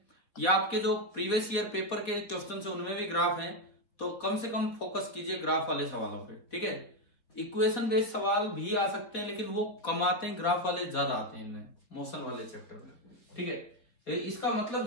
या आपके जो प्रीवियस ईयर पेपर के क्वेश्चन है उनमें भी ग्राफ हैं, तो कम से कम फोकस कीजिए ग्राफ वाले सवालों पे, ठीक है। इक्वेशन बेस्ड सवाल भी आ सकते हैं लेकिन वो कम आते हैं, ग्राफ वाले ज्यादा आते हैं इनमें, मोशन वाले चैप्टर में, ठीक है। तो इसका मतलब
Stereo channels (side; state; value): right; late; 4.2 ms